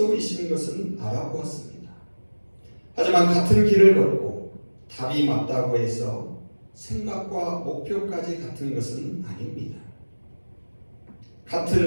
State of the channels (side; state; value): both; inverted; correlation -1.00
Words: 것은 알아보았습니다. 하지만 같은 길을 걷고 답이 맞다고 해서 생각과 목표까지 같은 것은 아닙니다.